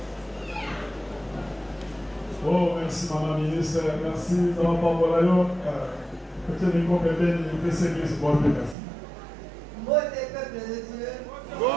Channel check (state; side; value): drops out; left; at 8.8 s